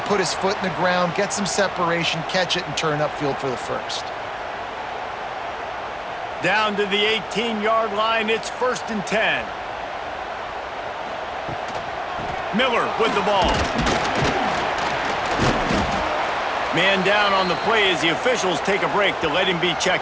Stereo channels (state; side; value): identical; both; correlation 1.00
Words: put his foot in the ground, get some separation, catch it, and turn upfield for the first. Down to the 18-yard line, it's 1st and 10. Miller with the ball. Man down on the play as the officials take a break to let him be